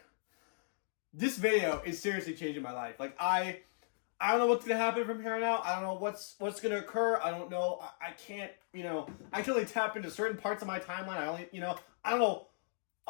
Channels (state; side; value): silent; right; digital silence